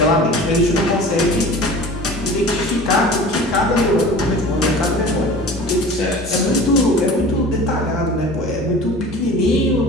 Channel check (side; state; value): both; normal; correlation 0.40